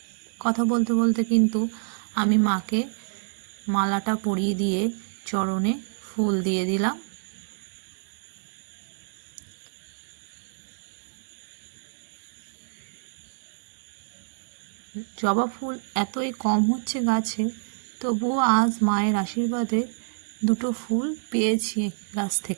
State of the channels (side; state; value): left; silent; digital silence